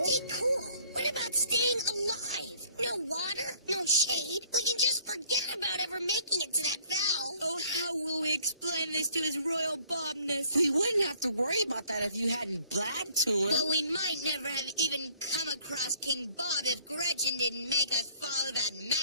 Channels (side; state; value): both; inverted; correlation -0.58